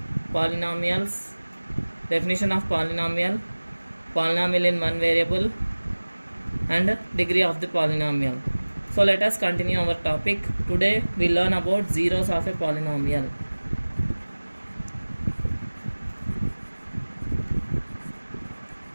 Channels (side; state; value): both; inverted; correlation -1.00